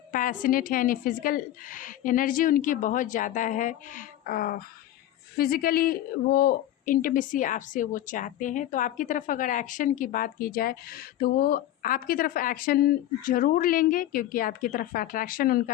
है, यानी फ़िज़िकल एनर्जी उनकी बहुत ज़्यादा है। फिज़िकली वो इंटीमेसी आपसे वो चाहते हैं। तो आपकी तरफ अगर एक्शन की बात की जाए तो वो आपकी तरफ एक्शन ज़रूर लेंगे, क्योंकि आपकी तरफ अट्रैक्शन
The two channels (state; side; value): quieter; right; 13.1 dB